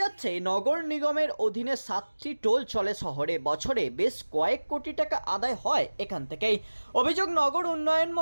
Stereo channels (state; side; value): inverted; both; correlation -1.00